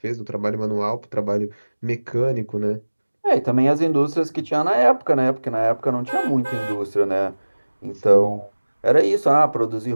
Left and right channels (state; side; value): inverted; both; correlation -1.00